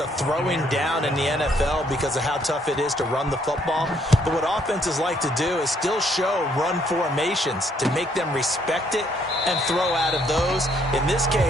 throwing down in the NFL because of how tough it is to run the football. But what offenses like to do is still show run formations to make them respect it and throw out of those. In this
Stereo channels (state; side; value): normal; both; correlation 0.68